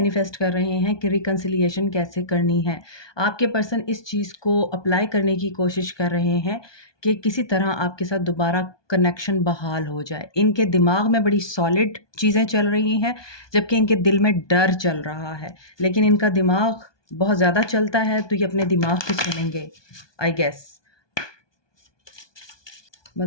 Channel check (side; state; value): right; late; 1.2 ms